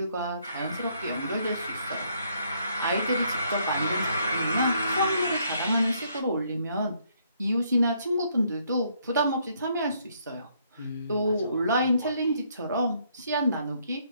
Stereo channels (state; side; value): inverted; both; correlation -0.70